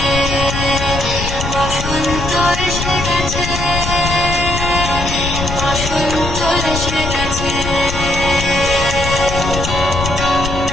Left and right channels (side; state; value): left; noise; rumble, 4 dB below the sound